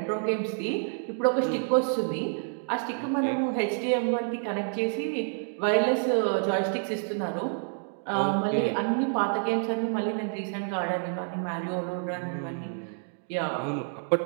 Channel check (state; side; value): silent; left; 59 dB below the other